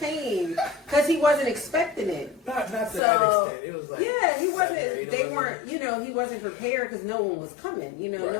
because he wasn't expecting it. Not to that extent. It was like, yeah, he wasn't, they weren't, you know, he wasn't prepared because no one was coming. You know,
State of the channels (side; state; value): right; drops out; at 3.0 s